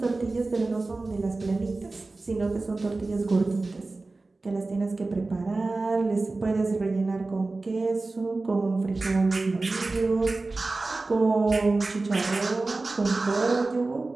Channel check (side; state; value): left; quieter; 3.4 dB